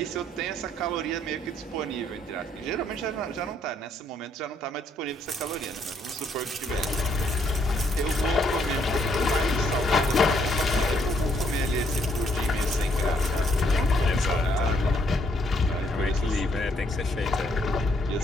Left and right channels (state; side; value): normal; both; correlation 0.71